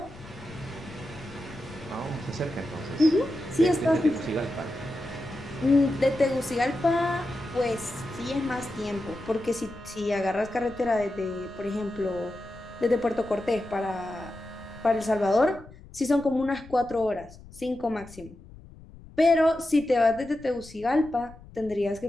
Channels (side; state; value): left; noise; rumble, 19 dB below the sound